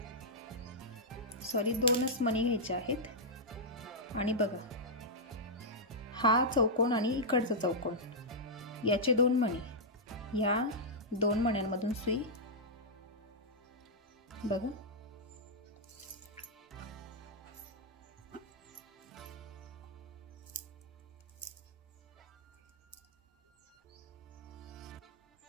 सॉरी, 2च मणी घ्यायचे आहेत। आणि बघा हा चौकोन आणि इकडचा चौकोन, याचे 2 मणी, या 2 मण्यांमधून सुई बघा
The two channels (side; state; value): both; normal; correlation -0.09